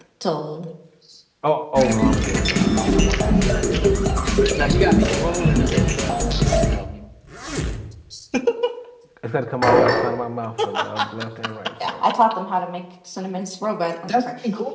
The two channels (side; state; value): both; identical; correlation 1.00